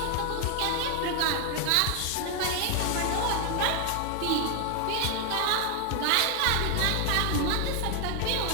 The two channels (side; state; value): both; different; correlation 0.00